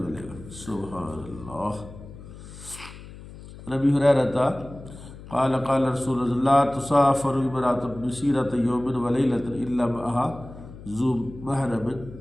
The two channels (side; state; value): left; noise; hum, 16 dB below the sound